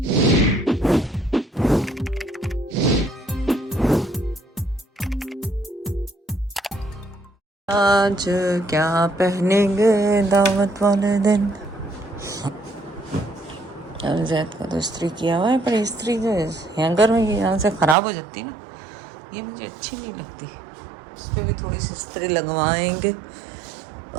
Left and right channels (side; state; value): left; drops out; at 17.9 s